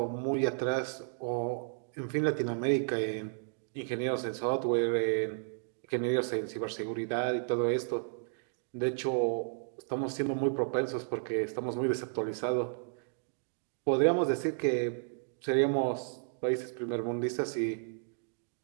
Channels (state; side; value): silent; left; digital silence